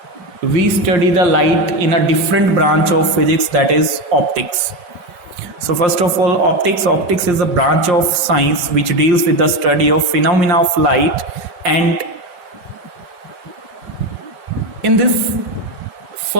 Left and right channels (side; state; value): left; late; 5.6 ms